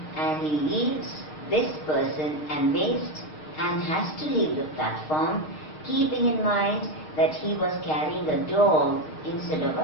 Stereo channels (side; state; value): right; late; 6.4 ms